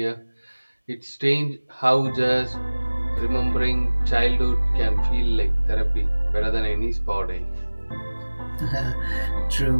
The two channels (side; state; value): both; inverted; correlation -1.00